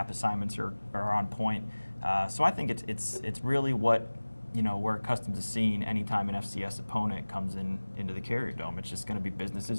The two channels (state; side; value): inverted; both; correlation -1.00